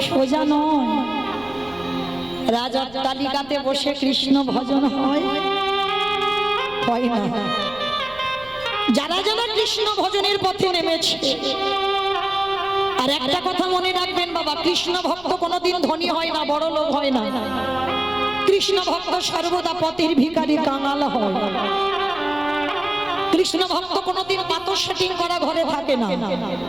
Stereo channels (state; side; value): noise; left; rumble, 22 dB below the sound